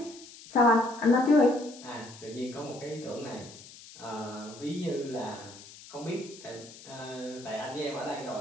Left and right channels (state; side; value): noise; left; hiss, 18 dB below the sound